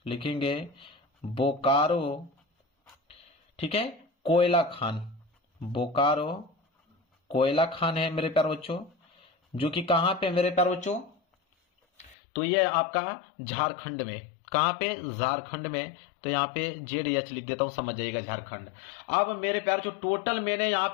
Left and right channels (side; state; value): right; drops out; at 12.2 s